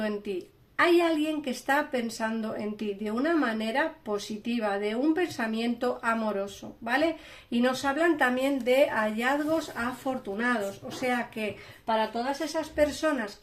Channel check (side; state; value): both; identical; correlation 1.00